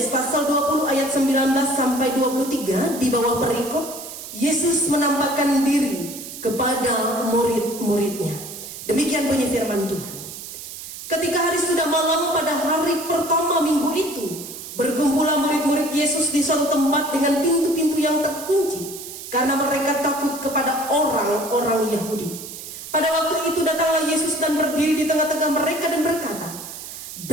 pasal 20 ayat 19 sampai 23 di bawah perikop Yesus menampakkan diri kepada murid-muridnya. Demikian bunyi firman Tuhan. Ketika hari sudah malam pada hari pertama minggu itu, berkumpullah murid-murid Yesus di suatu tempat dengan pintu-pintu yang terkunci, karena mereka takut kepada orang-orang Yahudi. Pada waktu itu datanglah Yesus dan berdiri di tengah-tengah mereka dan berkata,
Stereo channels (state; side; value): noise; right; hiss, 11 dB below the sound